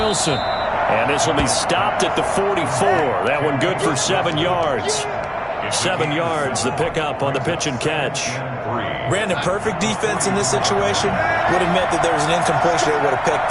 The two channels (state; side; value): identical; both; correlation 1.00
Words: And this will be stopped at the 44. That one good for 7 yards. 7 yards, the pickup on the pitch and catch. Brandon, perfect defense in this situation would have meant that there was an incompletion. They would have